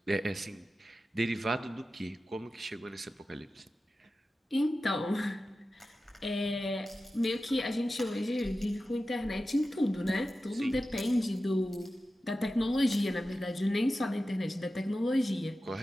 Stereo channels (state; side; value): normal; both; correlation 0.93